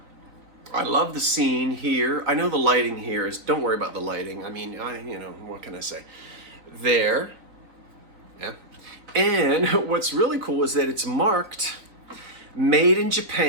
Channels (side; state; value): left; late; 3.9 ms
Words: I love the scene here. I know the lighting here is, don't worry about the lighting. I mean, what can I say? There. Yeah. And what's really cool is that it's marked made in